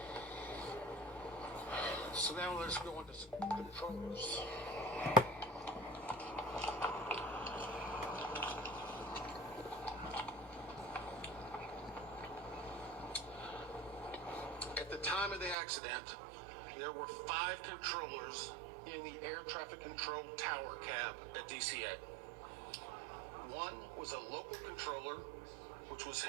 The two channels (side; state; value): left; drops out; at 15.6 s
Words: So now let's go into some controllers. At the time of the accident, there were 5 controllers in the air traffic control tower cab at DCA. One was a local controller, which was